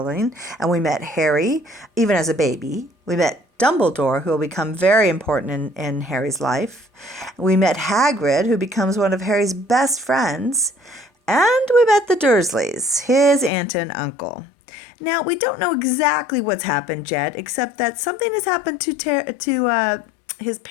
and we met Harry, even as a baby. We met Dumbledore, who will become very important in Harry's life. We met Hagrid, who becomes one of Harry's best friends. And we met the Dursleys, his aunt and uncle. Now, we don't know exactly what's happened yet, except that something has happened to his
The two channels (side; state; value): right; drops out; at 13.5 s